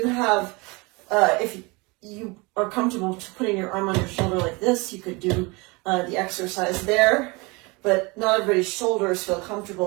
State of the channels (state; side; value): quieter; left; 26.6 dB